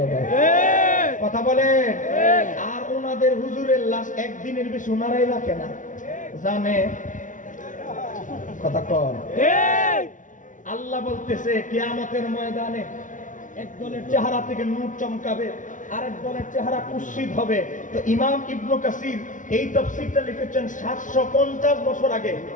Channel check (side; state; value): right; late; 0.37 ms